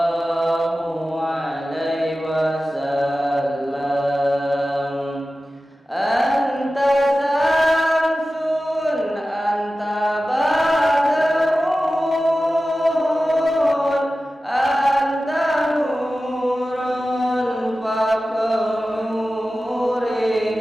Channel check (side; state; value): both; normal; correlation 0.95